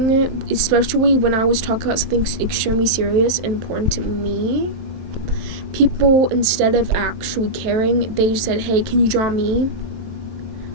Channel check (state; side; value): late; left; 23 ms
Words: especially when I was talking about something extremely serious and important to me. People, instead of actually caring, they just said, hey, can you draw me?